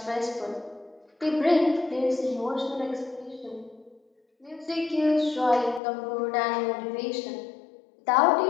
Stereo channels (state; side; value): drops out; right; at 5.8 s